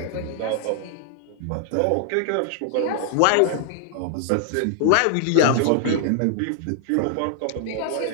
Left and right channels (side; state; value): both; different; correlation 0.00